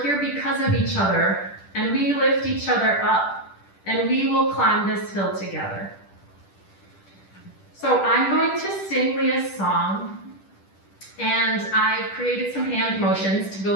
here because of each other, and we lift each other up, and we will climb this hill together. So I'm going to sing Leah's song, and I've created some hand motions to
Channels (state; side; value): late; right; 10 ms